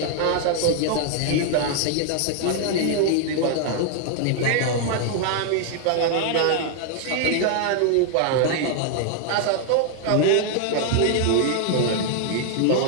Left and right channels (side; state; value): both; different; correlation 0.00